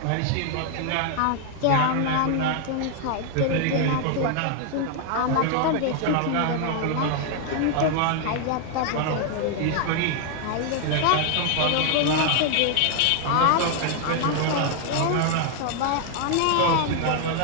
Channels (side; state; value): both; different; correlation 0.00